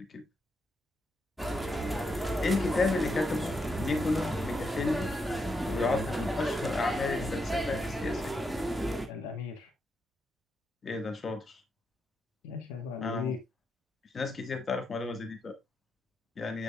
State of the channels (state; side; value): normal; both; correlation 0.82